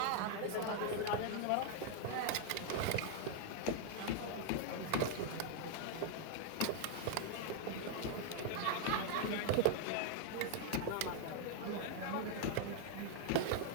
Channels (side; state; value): both; different; correlation 0.00